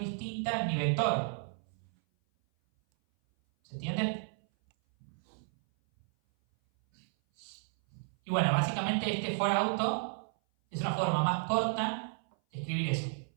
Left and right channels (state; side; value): silent; left; 56 dB below the other